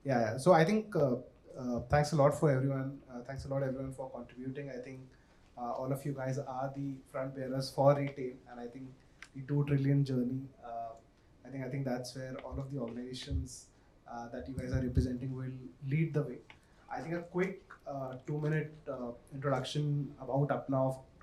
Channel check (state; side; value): identical; both; correlation 1.00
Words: Yeah. So I think thanks a lot for everyone. Thanks a lot everyone for contributing. I think all of you guys are the front bearers for retail, and I think the 2 trillion journey. I think that's where all of the organizations that you guys are representing will lead the way. I think a quick 2-minute introduction about Apna